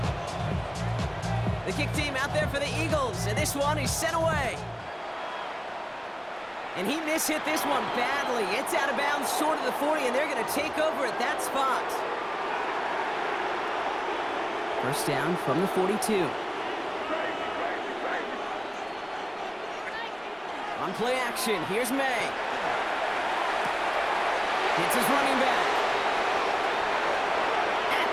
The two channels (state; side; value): identical; both; correlation 1.00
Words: The kick team out there for the Eagles, and this one is sent away. And he mishit this one badly. It's out of bounds short of the 40, and they're going to take over at that spot. First down from the 42. On play action, here's May. It's his running back. At